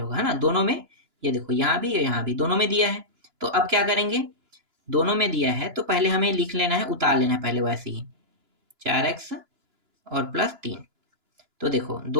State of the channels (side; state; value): left; late; 2.9 ms